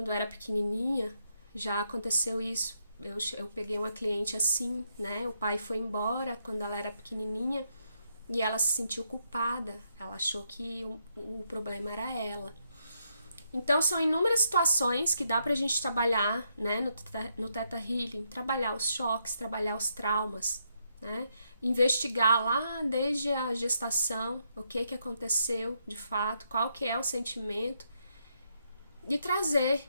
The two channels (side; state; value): both; inverted; correlation -0.78